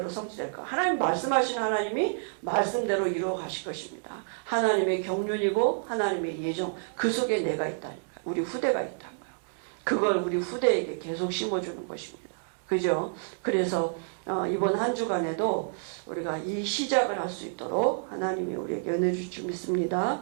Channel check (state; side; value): silent; left; 59 dB below the other